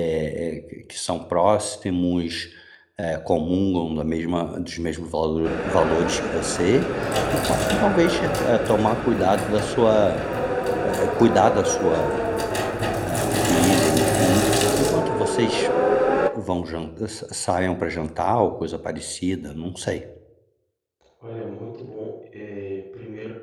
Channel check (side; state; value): both; identical; correlation 1.00